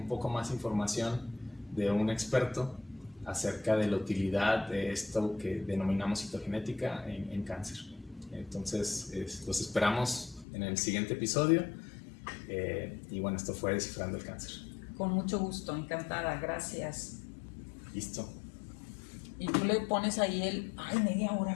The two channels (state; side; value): drops out; right; at 10.5 s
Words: poco más información de un experto acerca de la utilidad de esto que denominamos citogenética en cáncer. Entonces, los esperamos en el siguiente episodio. Y bueno, esto fue Descifrando el Cáncer. Con mucho gusto, encantada, gracias. Listo. Y tú le pones ahí media hora